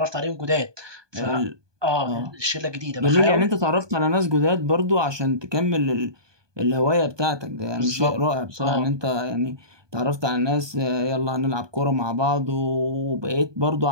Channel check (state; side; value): late; left; 1.2 ms